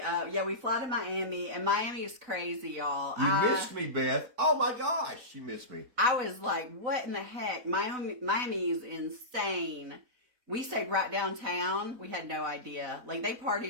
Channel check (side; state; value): left; late; 4.0 ms